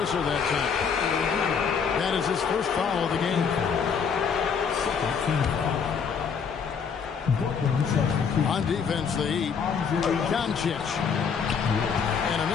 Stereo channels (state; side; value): quieter; right; 6.3 dB